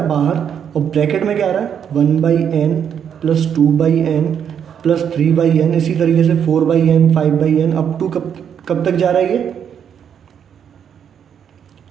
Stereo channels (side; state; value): left; quieter; 8.2 dB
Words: है बाहर और ब्रैकेट में क्या आ रहा है, 1/n plus 2/n plus 3/n, इसी तरीके से 4/n 5/n अप टू कब तक जा रहा है, ये